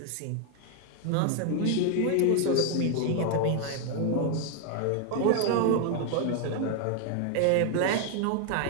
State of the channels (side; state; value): both; different; correlation 0.00